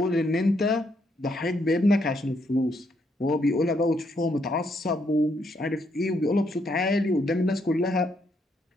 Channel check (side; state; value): both; normal; correlation 0.75